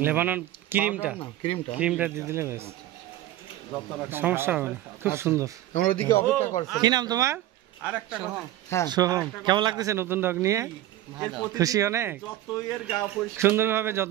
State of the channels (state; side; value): quieter; left; 14.2 dB